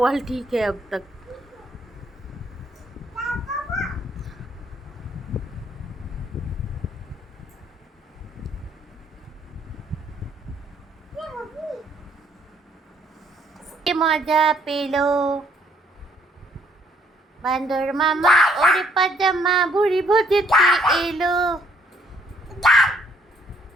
वाल ठीक है अब तक। মজা পেলো বান্দর মামা, ওরে পাজামা ভুড়ি ভোজেতে এলো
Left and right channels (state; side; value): normal; both; correlation 0.66